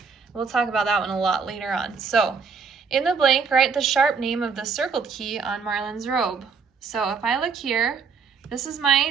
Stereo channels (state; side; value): quieter; left; 5.5 dB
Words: We'll talk about that one a lot later on. So in the blank, write the sharp name of the circled key on Marlon's robe. So if I look here, this is my